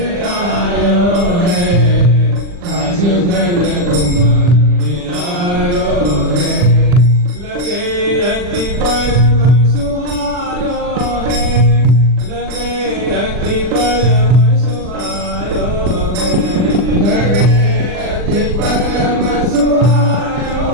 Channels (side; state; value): left; late; 40 ms